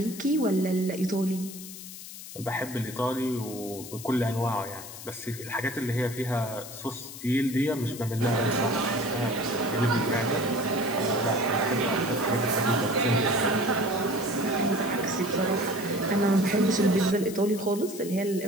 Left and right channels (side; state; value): left; noise; hiss, 13 dB below the sound